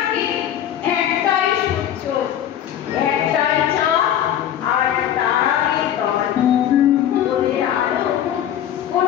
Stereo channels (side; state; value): right; quieter; 10.5 dB